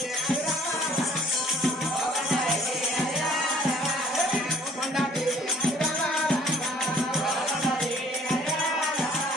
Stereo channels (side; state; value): both; normal; correlation 0.57